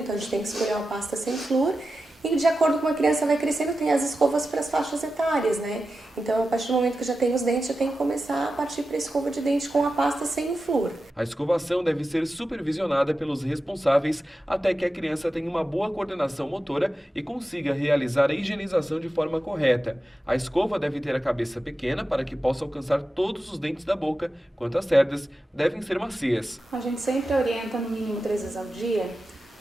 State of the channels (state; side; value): normal; both; correlation 0.92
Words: a gente tem que escolher uma pasta sem flúor. E de acordo com a criança vai crescendo, tem as escovas para as faixas etárias, né? Então, a partir do momento que já tem os dentes, já tem que começar a partir para a escova de dente com a pasta sem flúor. A escovação deve ser supervisionada pelos responsáveis até que a criança tenha uma boa coordenação motora e consiga realizar a higienização de forma correta. A escova deve ter a cabeça pequena para que possa alcançar todos os dentes da boca, enquanto as cerdas devem ser macias. A gente sempre orienta no mínimo 3 vezes ao dia,